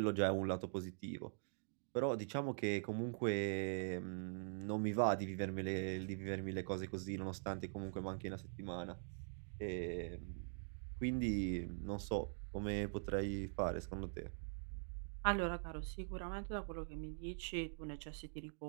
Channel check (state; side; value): silent; left; digital silence